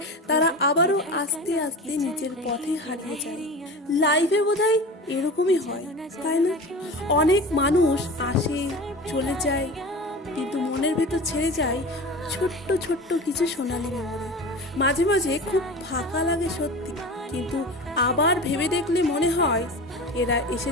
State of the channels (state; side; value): normal; both; correlation 0.32